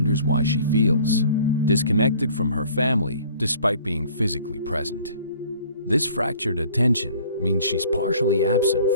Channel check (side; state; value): both; inverted; correlation -0.52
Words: why she feels disconnected from her family despite being physically present. This fractured attention means she's partially absent